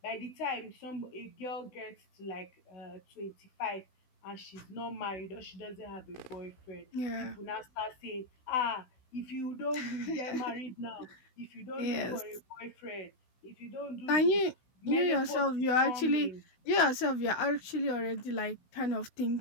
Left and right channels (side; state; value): right; late; 16 ms